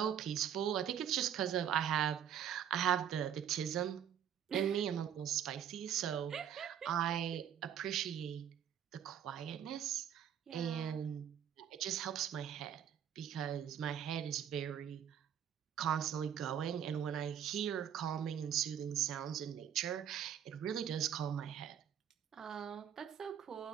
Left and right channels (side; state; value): left; quieter; 9.2 dB